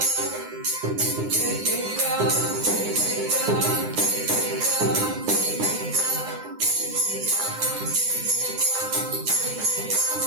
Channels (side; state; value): left; late; 9.8 ms